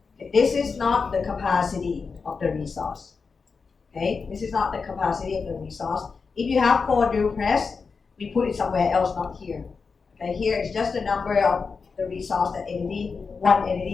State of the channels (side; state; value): right; quieter; 5.0 dB